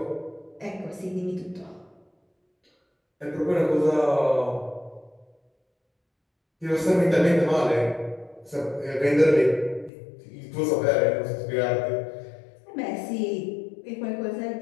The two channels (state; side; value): drops out; right; at 9.9 s